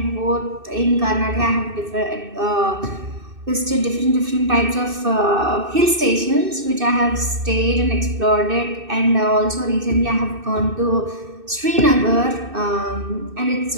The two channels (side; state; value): left; late; 2.6 ms